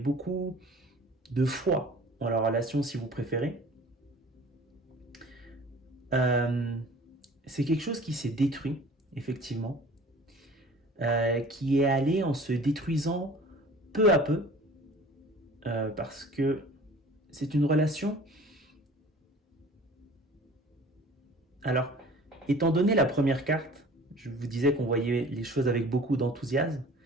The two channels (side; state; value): both; normal; correlation 0.45